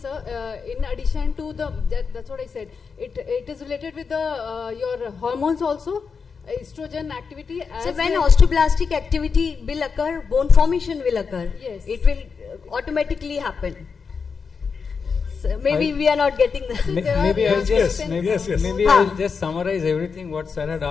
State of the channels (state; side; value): quieter; right; 5.5 dB